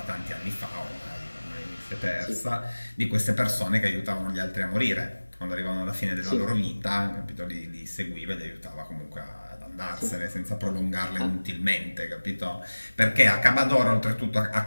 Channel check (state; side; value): inverted; both; correlation -1.00